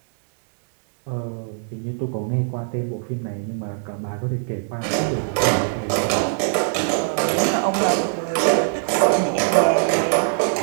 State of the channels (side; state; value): left; silent; digital silence